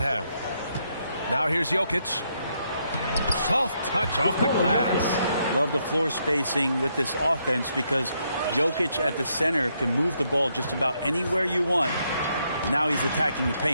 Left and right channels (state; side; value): inverted; both; correlation -0.76